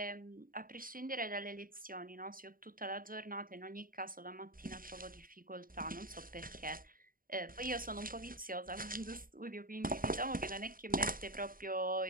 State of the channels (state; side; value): late; left; 0.41 ms